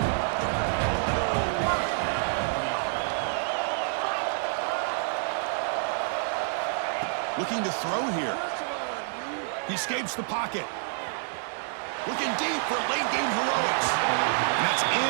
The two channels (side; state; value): left; silent; digital silence